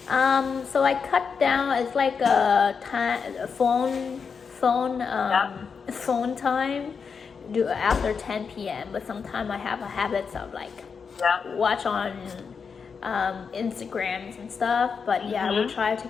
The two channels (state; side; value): quieter; right; 5.8 dB